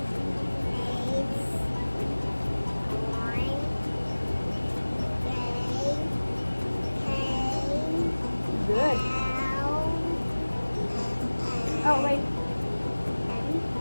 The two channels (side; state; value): both; inverted; correlation -1.00